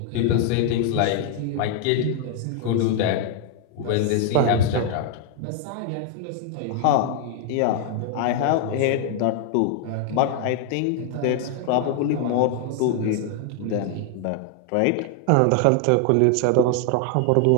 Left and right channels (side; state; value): both; different; correlation 0.00